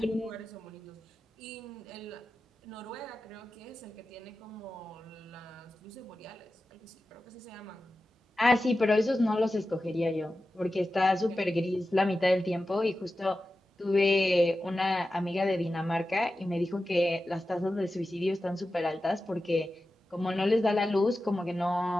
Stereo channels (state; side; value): normal; both; correlation 0.93